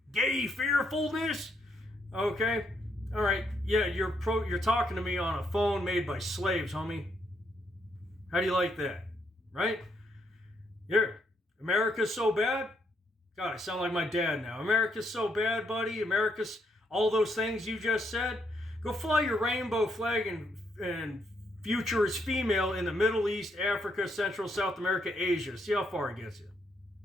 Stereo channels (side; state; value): both; normal; correlation 0.75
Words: gay fearfulness, okay? All right, yeah, you're talking to me on a phone made by slaves, homie. How do you like that? Right? America's so bad? God, I sound like my dad now. America's so bad, buddy. America's all those things you just said. Go fly your rainbow flag and future is female in the Middle East, Africa, Central, South America, Asia. See how far it gets you.